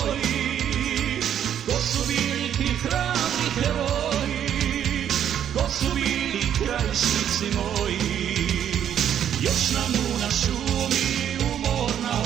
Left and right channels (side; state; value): left; quieter; 9.7 dB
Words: ko su bili ti hrabri heroji, ko su bili krajišnici moji. Još nam u na šumi umorna